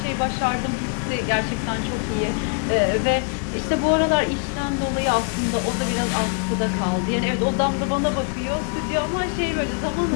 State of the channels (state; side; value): quieter; right; 39.2 dB